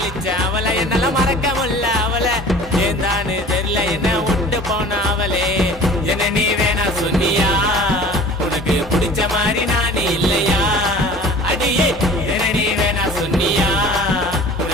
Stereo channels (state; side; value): normal; both; correlation 0.44